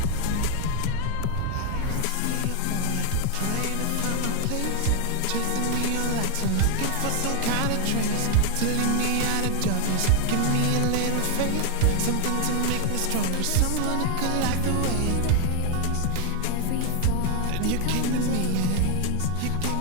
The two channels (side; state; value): both; different; correlation 0.00